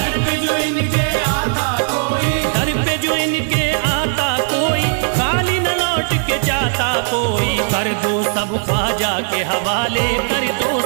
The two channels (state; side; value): silent; left; 64 dB below the other